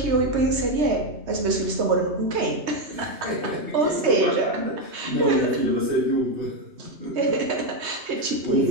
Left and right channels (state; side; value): late; left; 3.2 ms